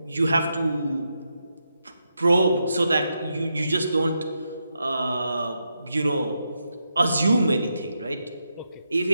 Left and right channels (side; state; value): both; inverted; correlation -0.84